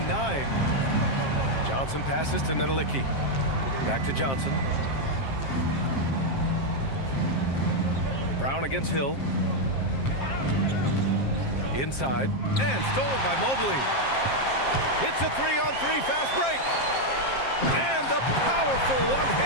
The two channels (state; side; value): late; right; 7.5 ms